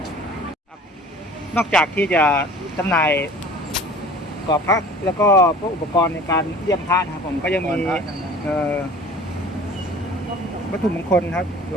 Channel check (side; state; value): both; normal; correlation 0.45